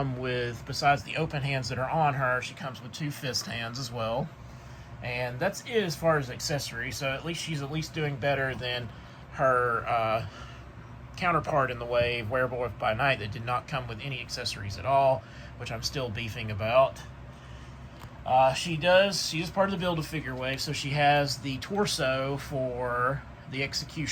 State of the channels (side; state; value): both; identical; correlation 1.00